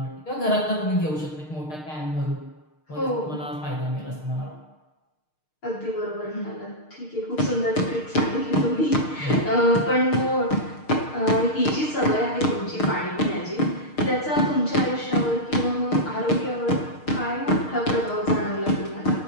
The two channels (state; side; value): late; right; 6.5 ms